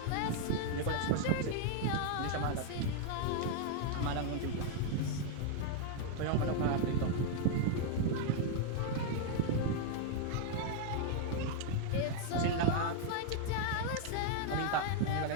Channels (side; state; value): both; different; correlation 0.00